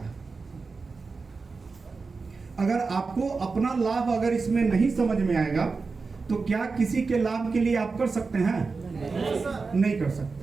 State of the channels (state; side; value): quieter; left; 4.4 dB